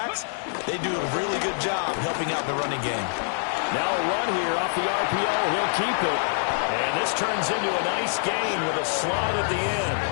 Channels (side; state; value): right; silent; digital silence